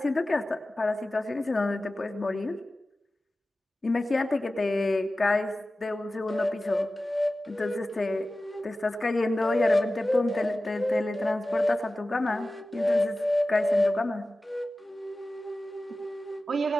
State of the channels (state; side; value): normal; both; correlation 0.96